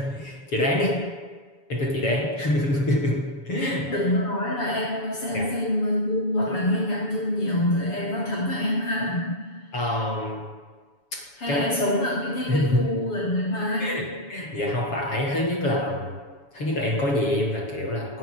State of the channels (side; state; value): right; late; 7.1 ms